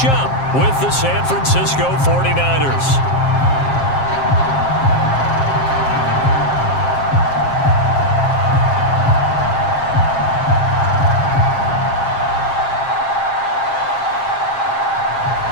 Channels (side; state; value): right; late; 7.5 ms